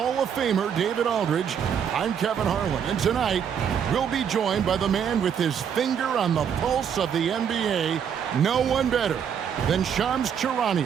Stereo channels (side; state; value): left; quieter; 8.0 dB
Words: of Famer David Aldridge, I'm Kevin Harlan. And tonight, we'll be joined by the man with his finger on the pulse of the NBA, no one better than Shams